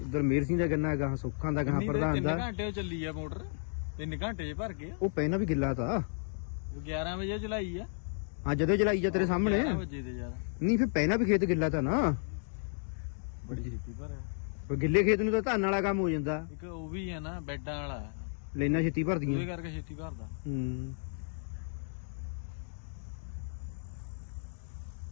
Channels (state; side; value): silent; right; digital silence